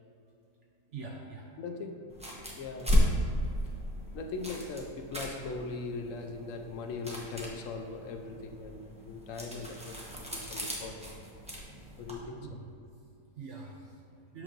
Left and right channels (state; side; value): normal; both; correlation 0.60